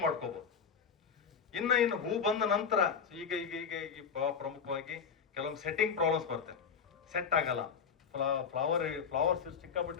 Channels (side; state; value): right; quieter; 6.5 dB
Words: ಮಾಡ್ಕೋಬಹುದು. ಇನ್ನು ಹೂ ಬಂದ ನಂತರ ಈಗ ಪ್ರಮುಖವಾಗಿ ಕೆಲವೊಂದು ಸೆಟ್ಟಿಂಗ್ ಪ್ರಾಬ್ಲಮ್ಸ್ ಬರ್ತವೆ. ಸೆಟ್ ಆಗಲ್ಲ, ಫ್ಲವರ್ಸ್